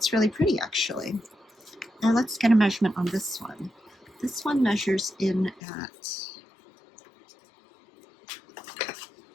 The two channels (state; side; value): drops out; right; at 5.6 s